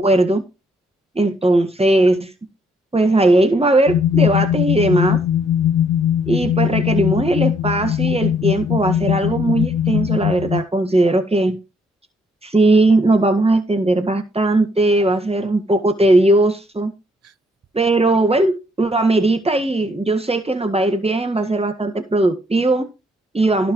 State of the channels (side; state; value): both; normal; correlation 0.68